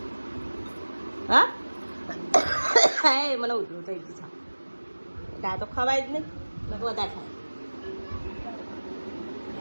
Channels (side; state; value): both; inverted; correlation -1.00